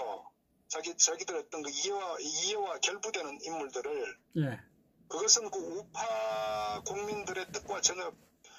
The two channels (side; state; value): both; identical; correlation 1.00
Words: 자기들 어떤 이해와 결부되는 인물들을. 예. 그것은 우파 국민들의 뜻과 전혀